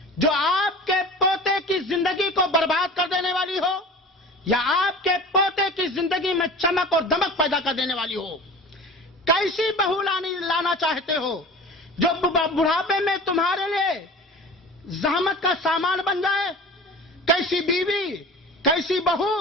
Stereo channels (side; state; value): both; normal; correlation 0.38